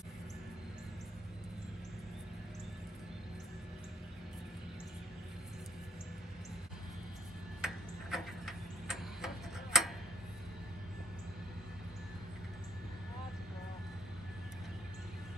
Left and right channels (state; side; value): normal; both; correlation 0.68